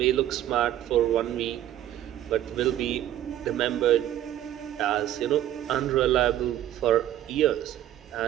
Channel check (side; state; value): left; quieter; 12.4 dB